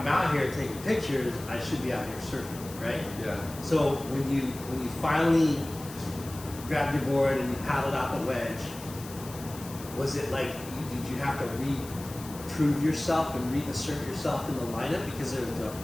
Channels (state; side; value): noise; left; hiss, 15 dB below the sound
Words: out here taking pictures. I should be out here surfing," right? yeah. So when you finally grabbed your board and you paddled out the Wedge, was it like did you have to prove yourself and reassert yourself in the lineup because there